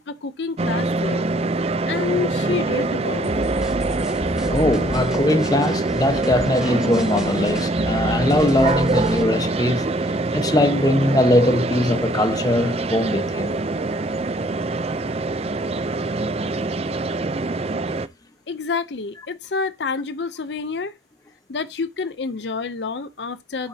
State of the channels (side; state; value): both; normal; correlation 0.60